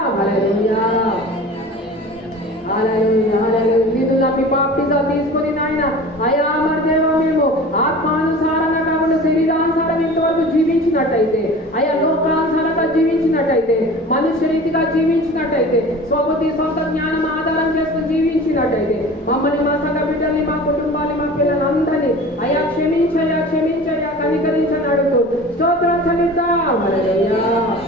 హల్లెలూయా హల్లెలూయా హల్లెలూయా. నిన్ను నమ్మి బాప్టిజాలు తీసుకొని నాయన అయా మరి దేవా మేము ఆత్మానుసారంగా కాకుండా శరీరానుసారం ఇంతవరకు జీవించినట్టయితే అయా లోకానుసారంగా జీవించినట్టయితే మనుష్య రీతిగా జీవించినట్టయితే స్వబుద్ధి సొంత జ్ఞానం ఆధారం చేసుకుని జీవించినట్టయితే మమ్మల్ని మా సంఘ బిడ్డల్ని మా కుటుంబాన్ని మా పిల్లలందరినీ అయా క్షమించయ్యా క్షమించయ్యా కనికరించని అడుగుతూ స్తోత్రం చెల్లిద్దాం. హల్లెలూయా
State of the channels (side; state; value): both; normal; correlation 0.39